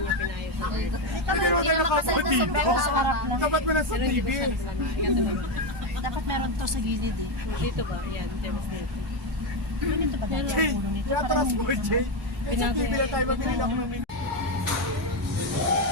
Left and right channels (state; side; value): normal; both; correlation 0.08